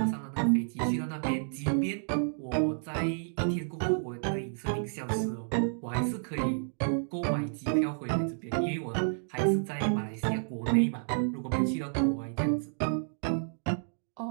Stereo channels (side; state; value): left; silent; digital silence